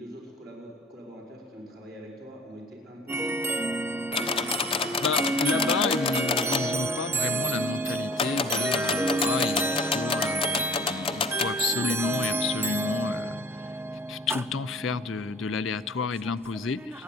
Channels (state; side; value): normal; both; correlation 0.49